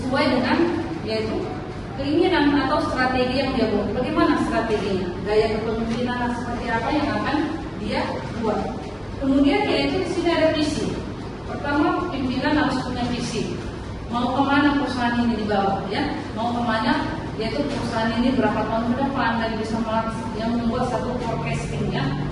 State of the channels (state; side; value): identical; both; correlation 1.00